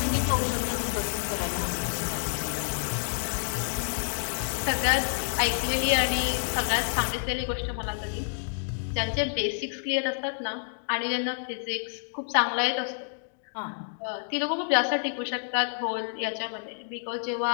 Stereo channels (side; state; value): right; silent; digital silence